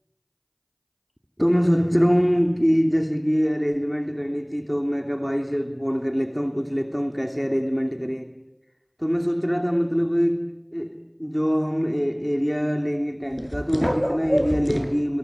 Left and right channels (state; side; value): identical; both; correlation 1.00